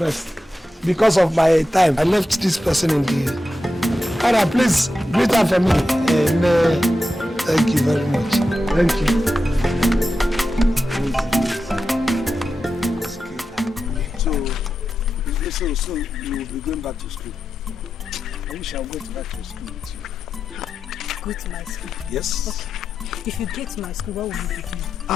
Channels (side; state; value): both; normal; correlation 0.90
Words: Because of my time. I left this person in the... Alright, please greet her for me. Thank you very much. Thank you. So you will be going back to school. I wish I would go back to school with you. Go to my school? Yes. Okay. If you get to my school, what will you be doing?